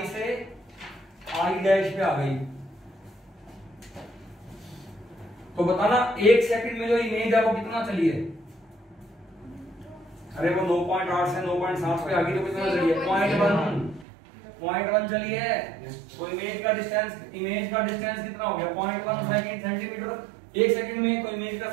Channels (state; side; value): drops out; left; at 14.1 s